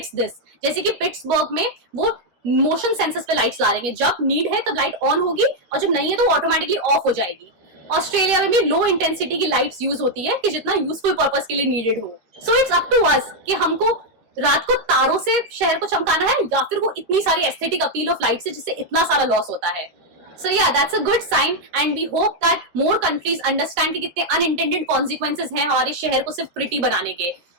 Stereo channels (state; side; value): late; left; 12 ms